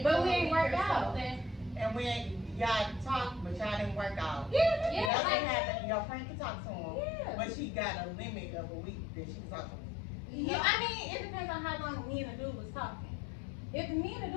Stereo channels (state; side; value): drops out; right; at 5.1 s